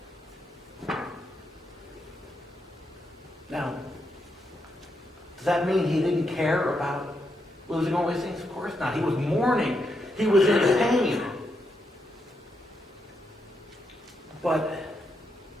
Now, does that mean he didn't care about losing all these things? Of course not. He was mourning. He was in pain. But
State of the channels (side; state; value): both; normal; correlation 0.82